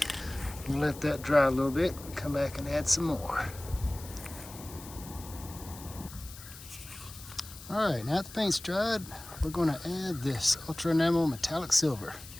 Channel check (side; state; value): left; noise; hiss, 16 dB below the sound